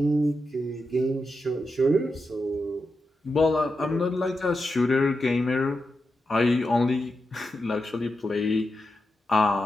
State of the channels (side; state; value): both; normal; correlation 0.88